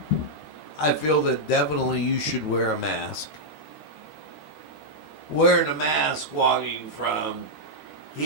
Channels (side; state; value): right; late; 13 ms